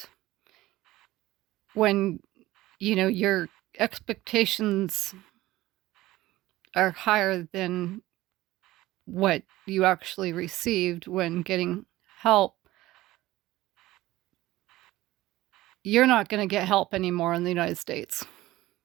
when, your expectations are higher than what you actually received when getting help, you're not going to get help anymore in the United States.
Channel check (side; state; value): left; quieter; 17.0 dB